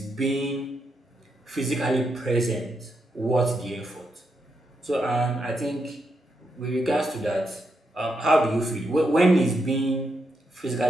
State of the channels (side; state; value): both; normal; correlation 0.82